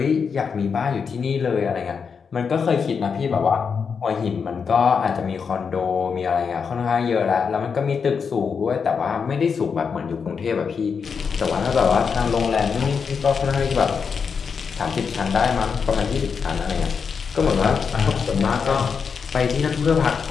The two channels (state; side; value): quieter; right; 6.0 dB